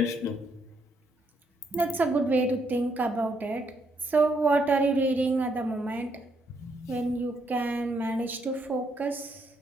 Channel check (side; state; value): both; normal; correlation 0.75